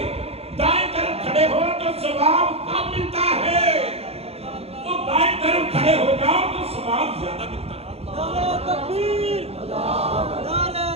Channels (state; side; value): late; left; 0.29 ms